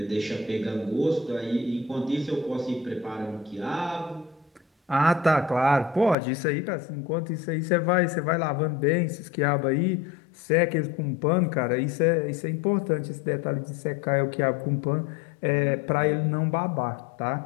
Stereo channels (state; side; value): drops out; right; at 6.2 s